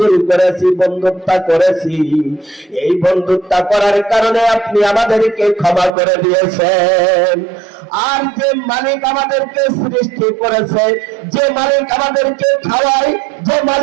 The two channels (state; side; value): drops out; left; at 5.9 s